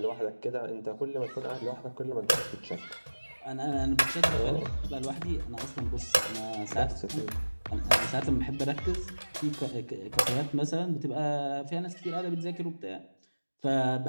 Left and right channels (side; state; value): both; inverted; correlation -1.00